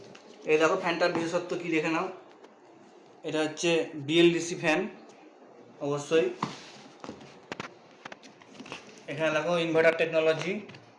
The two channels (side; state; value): both; identical; correlation 1.00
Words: এই দেখো ফ্যানটার বিশেষত্ব কি দেখে নাও। এটা হচ্ছে বিএলডিসি ফ্যান, অবশ্যই। এখানে দেখো inverter technology,